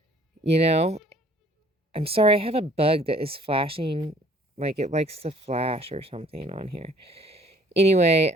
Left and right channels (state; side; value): normal; both; correlation 0.57